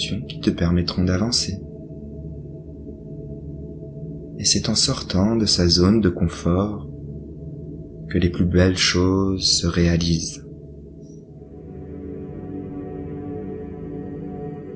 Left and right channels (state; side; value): identical; both; correlation 1.00